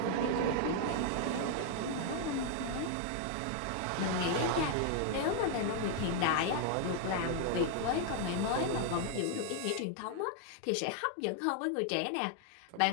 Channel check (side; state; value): both; different; correlation 0.00